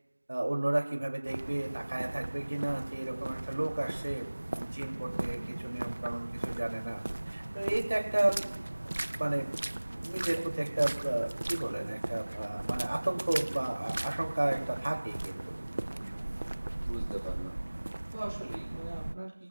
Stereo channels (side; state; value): both; inverted; correlation -1.00